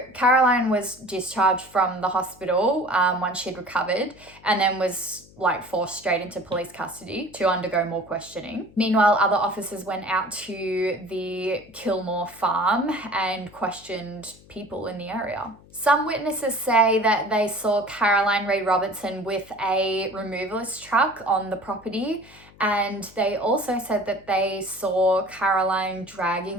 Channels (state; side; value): noise; left; hum, 25 dB below the sound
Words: Caroline was discharged from the hospital once she'd recovered, and then was forced straight into police custody to undergo more questioning. Meanwhile, other officers went out to the Kilmore farm and questioned people in the area. Some witnesses say that they saw Caroline Ray Robertson with a removalist truck on the property, and they also said that they saw Caroline dragging